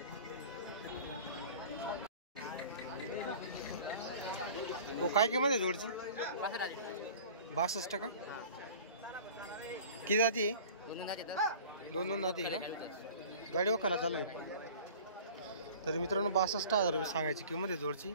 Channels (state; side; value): inverted; both; correlation -0.43